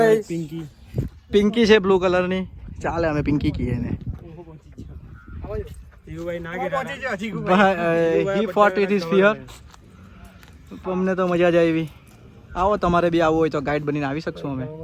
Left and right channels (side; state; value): both; identical; correlation 1.00